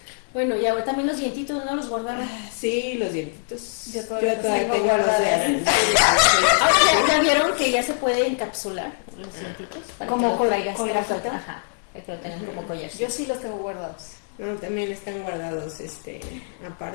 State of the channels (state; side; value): silent; right; digital silence